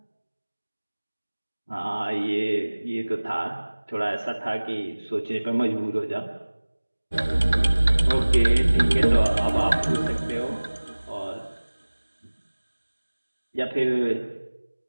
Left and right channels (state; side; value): inverted; both; correlation -1.00